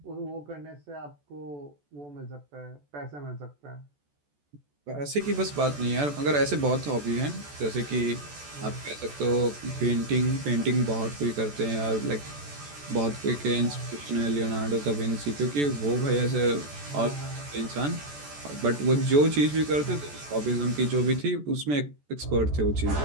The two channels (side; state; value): left; late; 14 ms